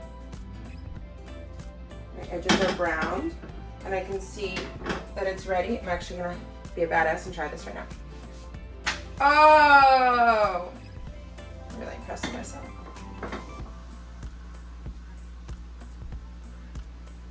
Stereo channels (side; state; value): both; identical; correlation 1.00